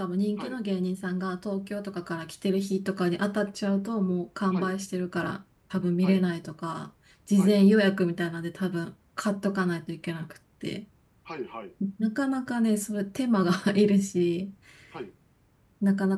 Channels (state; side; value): identical; both; correlation 1.00